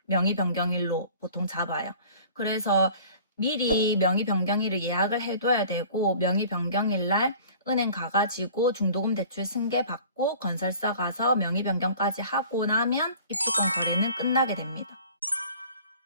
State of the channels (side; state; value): both; inverted; correlation -0.47